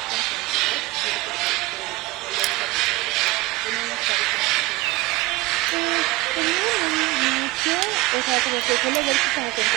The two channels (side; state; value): left; quieter; 21.5 dB